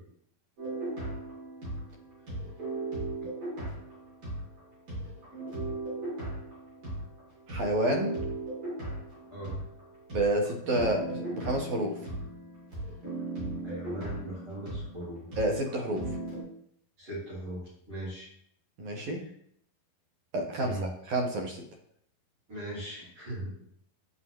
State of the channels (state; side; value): late; left; 12 ms